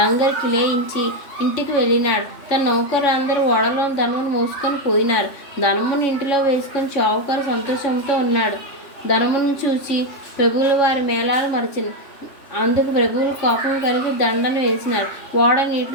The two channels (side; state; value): right; late; 3.1 ms